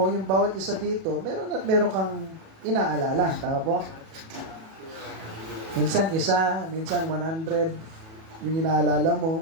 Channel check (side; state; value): left; late; 37 ms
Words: yung bawat isa dito, meron kang inaalala. Tama po? Minsan isa, minsan 100 yung inaalala mo.